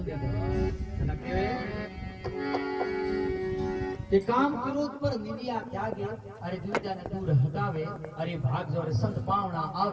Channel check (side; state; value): both; identical; correlation 1.00